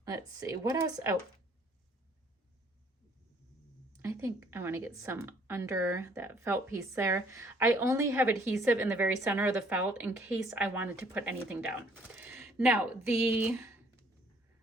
Let's see. What else? Oh. I think I want to get some under that felt piece there. I only have adhesive in the very center of the felt in case I wanted to put anything down. Now, the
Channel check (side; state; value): both; normal; correlation 0.61